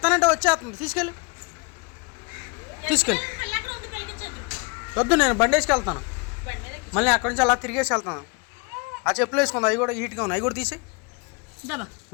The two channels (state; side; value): quieter; right; 32.0 dB